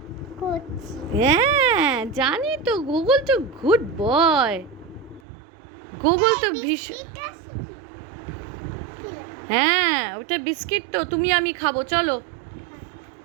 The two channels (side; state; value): left; drops out; at 5.2 s